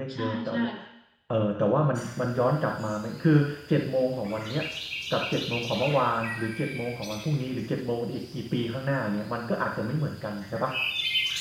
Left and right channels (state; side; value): identical; both; correlation 1.00